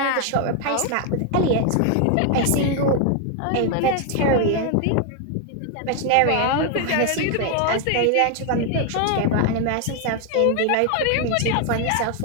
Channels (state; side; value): different; both; correlation 0.01